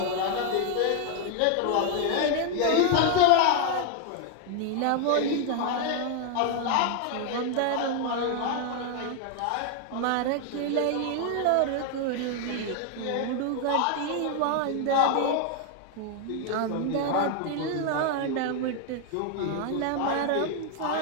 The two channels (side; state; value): both; different; correlation 0.00